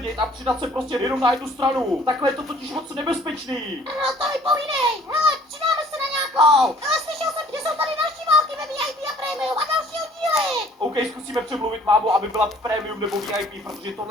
a přidat se prostě jenom na jednu stranu. Takhle je to totiž moc nebezpečný. No to mi povídej. Hele, přidáme se na nějakou. Ale slyšel jsem, že jsou tady další války ve VIP a Premium a další oddíly. OK, zkusíme přemluvit mámu, aby byla premium nebo VIP, protože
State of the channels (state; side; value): normal; both; correlation 0.56